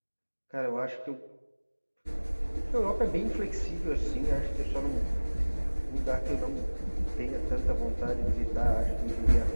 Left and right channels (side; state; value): both; inverted; correlation -1.00